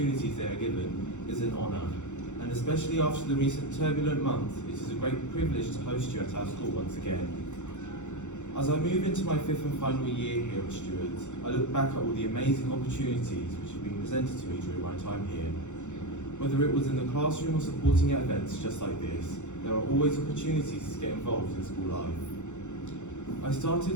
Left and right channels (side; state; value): right; late; 0.84 ms